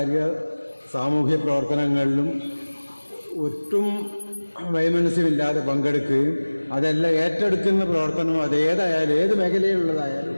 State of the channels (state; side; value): inverted; both; correlation -1.00